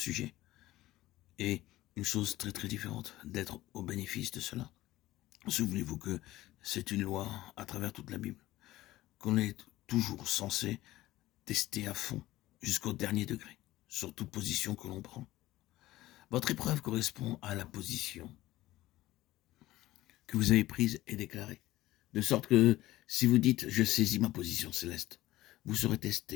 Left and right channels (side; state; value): right; quieter; 16.4 dB